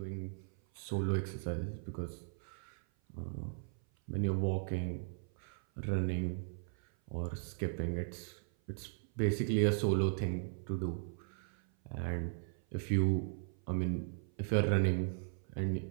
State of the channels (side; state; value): left; silent; 53 dB below the other